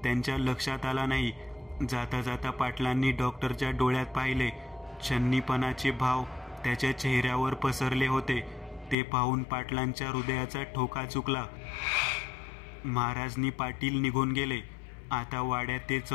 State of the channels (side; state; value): right; drops out; at 9.0 s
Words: त्यांच्या लक्षात आला नाही. जाता जाता पाटलांनी डॉक्टरच्या डोळ्यात पाहिले. छन्नीपणाचे भाव त्याच्या चेहऱ्यावर पसरले होते. ते पाहून पाटलांच्या हृदयाचा ठोका चुकला. महाराजनी पाटील निघून गेले. आता वाड्यात ते